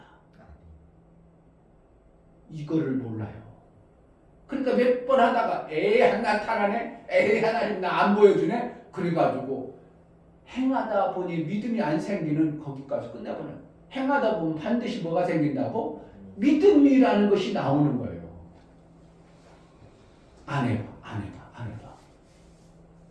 이거를 몰라요. 그러니까 몇 번 하다가 나타나네, 하나님 나 안 보여주네. 그래가지고 행하다 보니 믿음이 안 생기는 거기까지 끝나버려요. 행하다 보면 반드시 뭐가 생긴다고? 믿음이라는 것이 나오는 거예요. 안 해봐.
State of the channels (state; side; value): identical; both; correlation 1.00